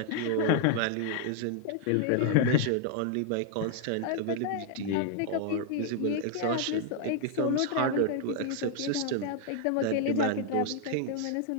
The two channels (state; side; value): different; both; correlation 0.00